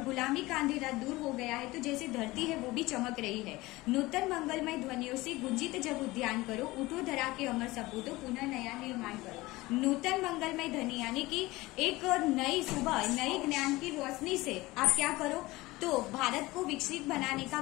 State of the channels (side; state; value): right; quieter; 20.1 dB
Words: गुलामी का अंधेरा दूर हो गया है, तो जैसे धरती है वो भी चमक रही है। नूतन मंगलमय ध्वनियों से गुंजित जब उद्यान करो, उठो धरा के अमर सपूतो पुनः नया निर्माण करो। नूतन मंगलमय ध्वनि यानी कि एक नई सुबह नई ज्ञान की रोशनी से आप क्या करो, तो भारत को विकसित बनाने का